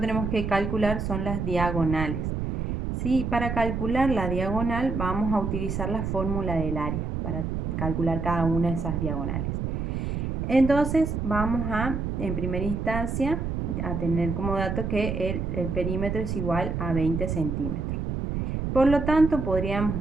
que calcular son las diagonales. Sí, para calcular la diagonal vamos a utilizar la fórmula del área para calcular cada una de esas diagonales. Entonces vamos en primera instancia, a tener como dato que el perímetro es igual a 20 centímetros. Por lo tanto, podríamos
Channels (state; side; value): noise; right; rumble, 2 dB below the sound